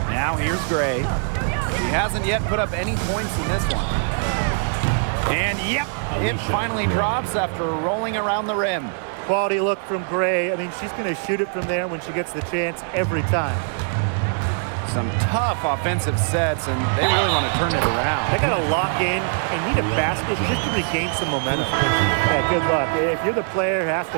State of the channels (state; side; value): silent; left; 64 dB below the other